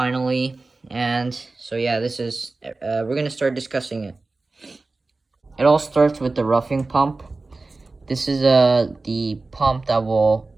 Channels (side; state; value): left; quieter; 3.5 dB